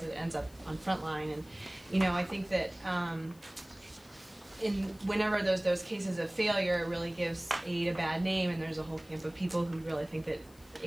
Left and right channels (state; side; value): noise; left; hiss, 26 dB below the sound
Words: it ends up on frontline, and you know, I think that whenever those cases of failure, it really gives aid a bad name, and there's a whole camp of people who really think that